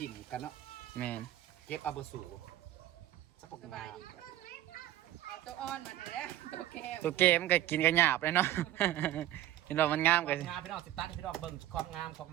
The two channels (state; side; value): quieter; left; 13.8 dB